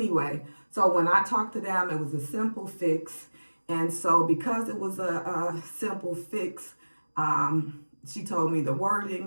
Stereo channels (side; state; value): both; inverted; correlation -1.00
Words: so when I talked to them, it was a simple fix. And so because it was a simple fix, she told me the